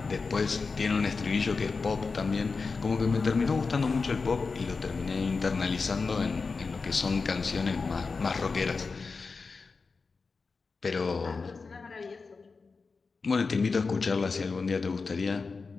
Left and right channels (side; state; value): right; quieter; 4.5 dB